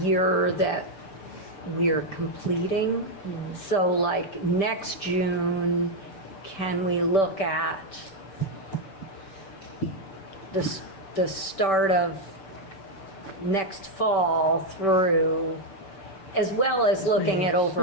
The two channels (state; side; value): late; right; 6.8 ms